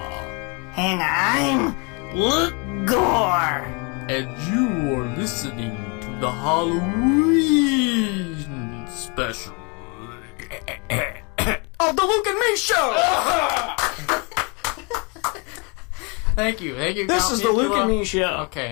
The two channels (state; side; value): quieter; right; 32.2 dB